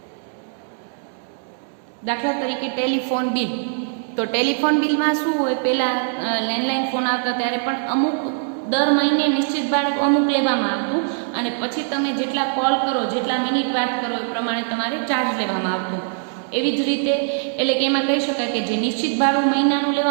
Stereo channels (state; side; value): silent; left; 64 dB below the other